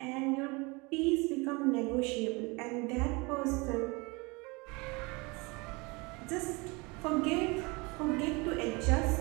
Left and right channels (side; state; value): left; quieter; 26.7 dB